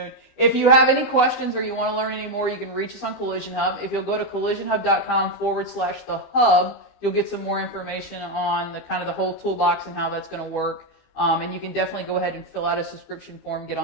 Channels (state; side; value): late; right; 15 ms